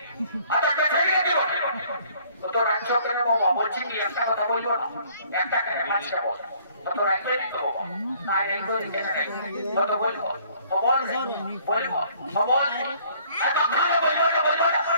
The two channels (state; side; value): inverted; both; correlation -0.59